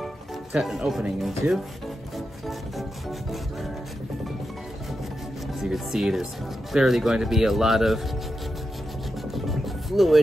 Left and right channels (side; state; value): both; normal; correlation 0.88